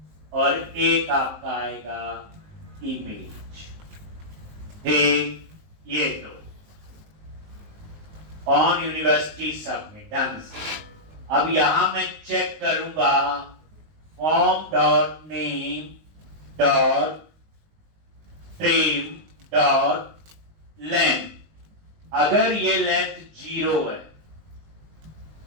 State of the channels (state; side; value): late; left; 19 ms